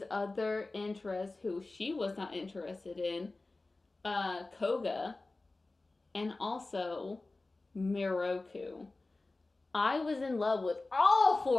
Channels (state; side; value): quieter; right; 3.2 dB